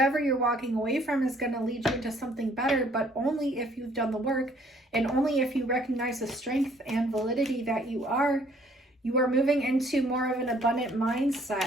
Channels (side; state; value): both; normal; correlation 0.62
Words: you're walking away from is going to lead you into something better, but only if you've done the work, and only if you recognize the strength and validity that you are moving into more of an abundant